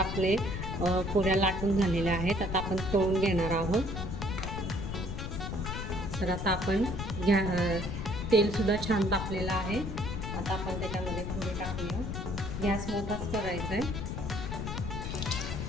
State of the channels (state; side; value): noise; left; rumble, 4 dB below the sound